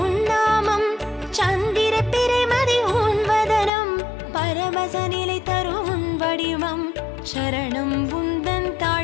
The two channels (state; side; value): drops out; right; at 3.7 s